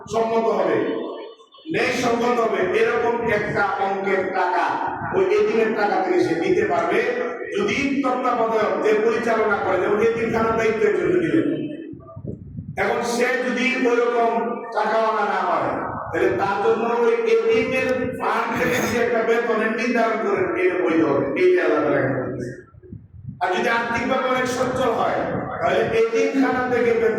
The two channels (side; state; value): both; identical; correlation 1.00